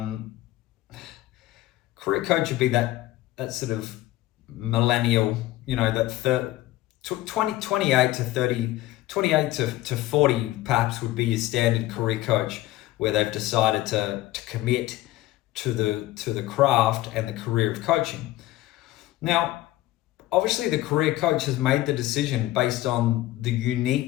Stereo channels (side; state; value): right; quieter; 16.3 dB